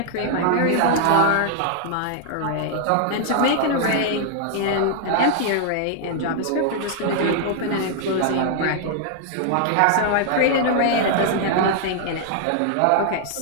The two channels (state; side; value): different; both; correlation -0.01